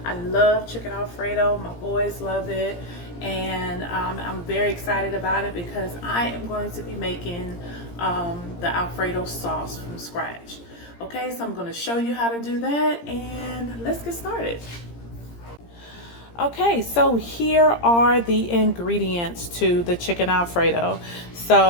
I love chicken Alfredo. My boys love it, and I'm very excited about it because I am going to be making the Alfredo sauce from scratch. Okay, so I'm going to show you how to do that, and let's get started. Okay, so here are the ingredients to the chicken Alfredo.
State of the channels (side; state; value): right; late; 17 ms